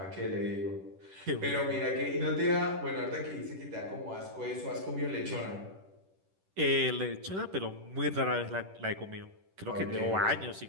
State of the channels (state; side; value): late; left; 10 ms